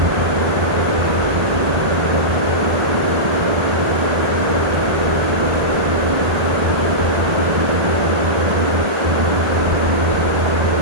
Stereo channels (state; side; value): late; left; 1.5 ms